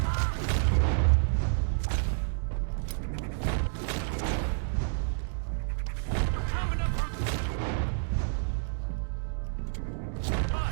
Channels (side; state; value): left; silent; digital silence